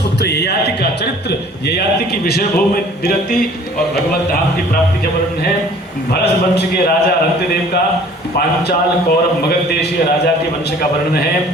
ययाति का चरित्र, ययाति की विषय भूमि विरक्ति और भगवत धाम की प्राप्ति का वर्णन है। भरत वंश के राजा रंतिदेव का, पांचाल कौरव मगध देशीय राजा के वंश का वर्णन है।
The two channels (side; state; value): both; normal; correlation 0.51